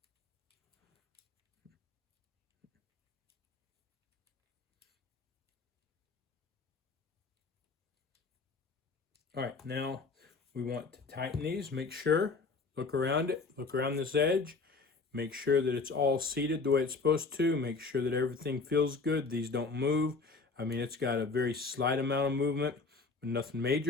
All right, now we want to tighten these. Make sure, look around it, look around this edge. Make sure that it's all seated the way it's supposed to. Make sure that everything feels good. These don't move. I mean, it's got a very slight amount of movement, but nothing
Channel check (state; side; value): quieter; right; 4.1 dB